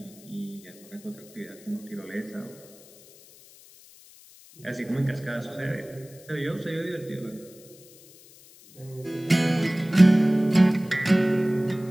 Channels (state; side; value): noise; left; hiss, 23 dB below the sound